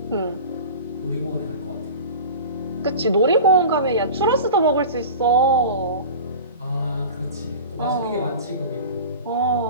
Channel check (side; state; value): both; inverted; correlation -0.34